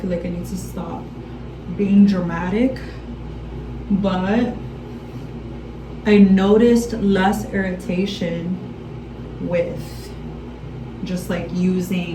like I need to stop being dramatic. But I noticed less irritation with just like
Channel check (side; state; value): both; identical; correlation 1.00